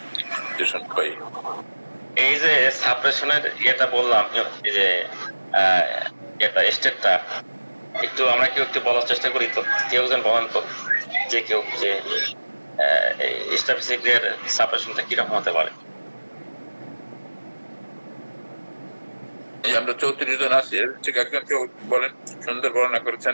এই যে সাপ্রেশনের ইয়েটা বললাম, এই যে এটা স্টেটটা একটু আমরা কেউ একটু বলার চেষ্টা করি, তো কেউ যেন বলেন তো, যে কেউ যে স্ট্যাটিস্টিকের সাপ্রেশনটা কিরকম হতে পারে। আমরা 34 জন আছি, ঠিক একজন কেউ বলেন, সুন্দর বর্ণনা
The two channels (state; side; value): inverted; both; correlation -1.00